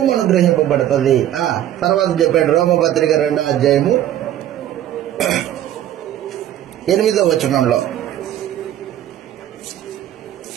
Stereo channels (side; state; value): left; quieter; 11.9 dB